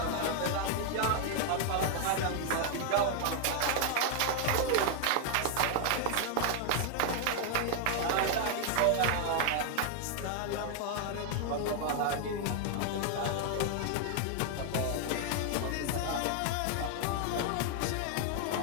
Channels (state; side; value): different; both; correlation 0.00